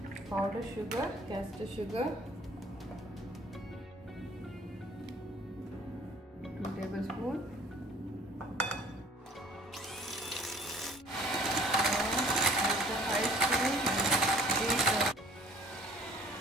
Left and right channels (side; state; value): both; normal; correlation 0.53